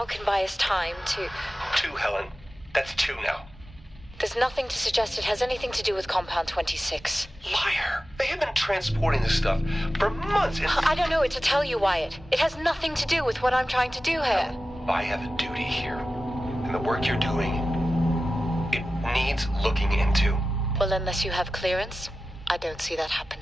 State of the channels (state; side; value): normal; both; correlation 0.95